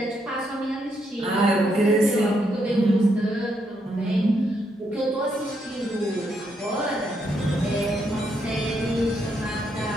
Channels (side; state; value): both; normal; correlation 0.77